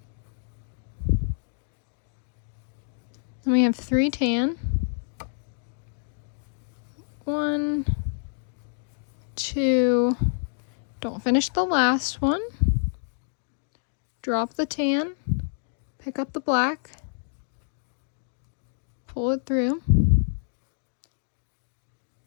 Then we have 3 tan. 1, 2, don't finish the last one. Drop the tan, pick up the black, pull it through.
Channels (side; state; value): right; silent; digital silence